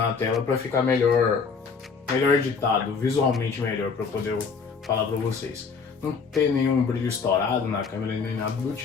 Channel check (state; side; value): quieter; right; 5.3 dB